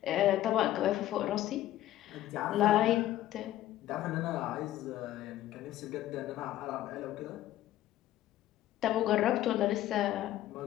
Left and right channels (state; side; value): quieter; right; 13.8 dB